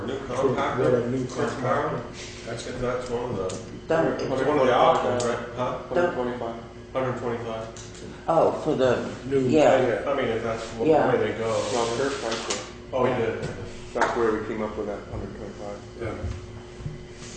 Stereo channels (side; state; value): both; identical; correlation 1.00